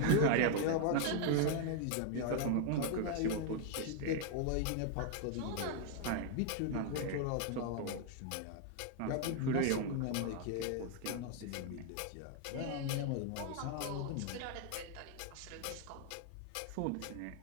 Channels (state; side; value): different; both; correlation 0.00